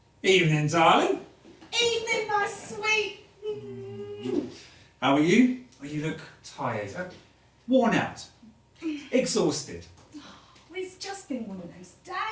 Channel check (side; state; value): both; identical; correlation 1.00